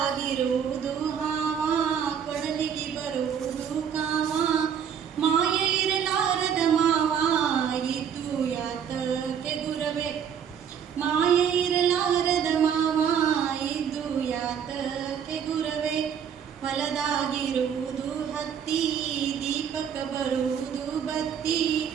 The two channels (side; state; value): left; quieter; 8.0 dB